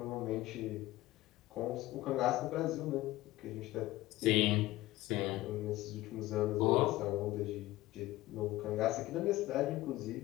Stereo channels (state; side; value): quieter; right; 17.3 dB